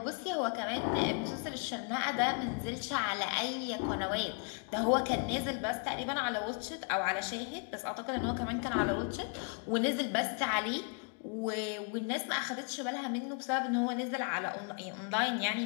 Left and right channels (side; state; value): right; quieter; 38.6 dB